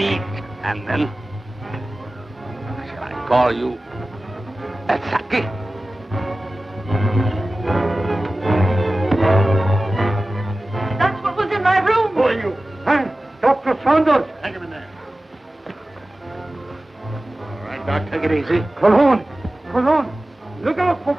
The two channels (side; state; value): both; normal; correlation 0.96